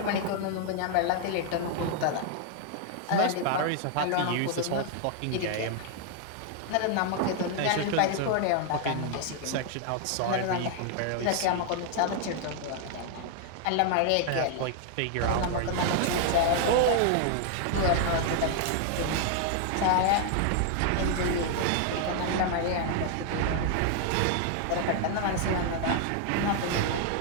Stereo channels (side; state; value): both; different; correlation 0.00